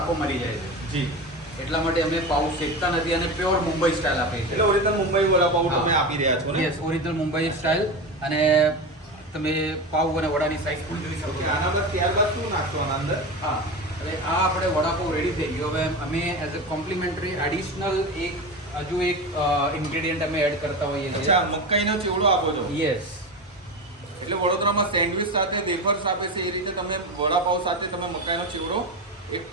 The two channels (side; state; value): both; normal; correlation 0.23